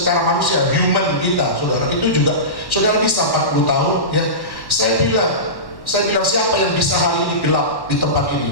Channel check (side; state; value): right; late; 1.1 ms